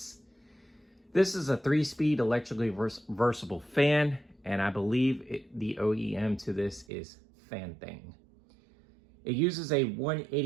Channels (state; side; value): drops out; left; at 6.9 s